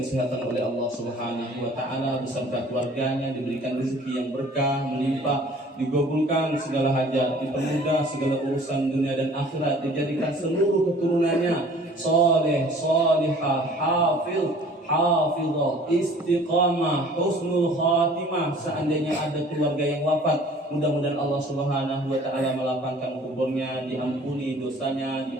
oleh Allah Subhanahu wa taala beserta keluarganya, diberikan rezeki yang berkah, melimpah, digabulkan segala hajat, dipermudah segala urusan dunia dan akhirat, dijadikan seluruh keturunannya saleh, salihah, hafiz, hafizah, istiqamah, husnul khatimah. Seandainya ada keluarga yang wafat, mudah-mudahan Allah Subhanahu wa taala melapangkan kuburnya, diampuni dosanya,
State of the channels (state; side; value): normal; both; correlation 0.51